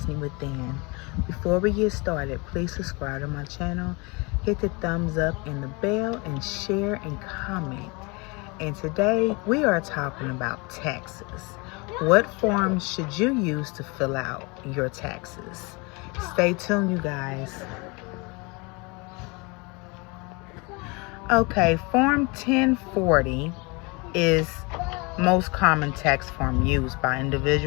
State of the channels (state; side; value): quieter; right; 28.1 dB